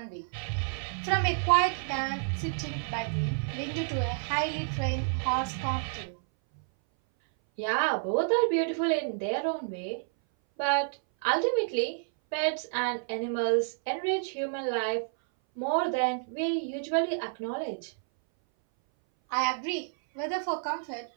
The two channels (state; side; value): silent; left; 58 dB below the other